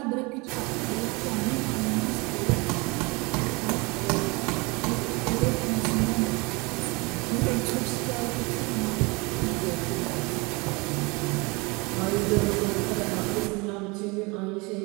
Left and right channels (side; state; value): left; quieter; 26.9 dB